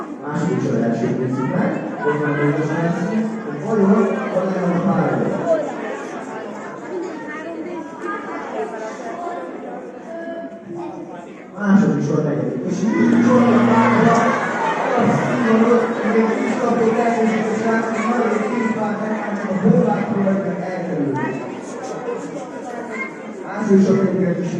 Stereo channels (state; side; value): identical; both; correlation 1.00